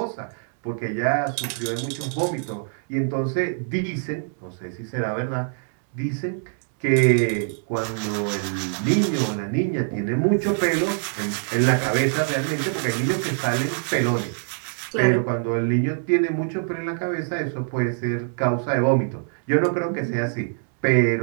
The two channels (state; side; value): silent; left; digital silence